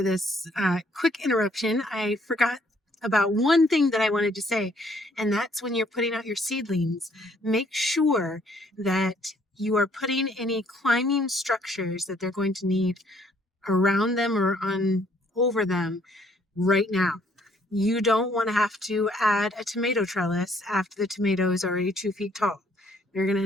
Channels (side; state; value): both; normal; correlation 0.65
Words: this quick interruption. I forgot about one thing that I wanted to say, and that's when you're putting out your seedlings, make sure that you are putting any climbing structures that they're going to need around them or over them right now. You don't want to have to add a tomato trellis after the tomato is already 2 feet tall. You're going to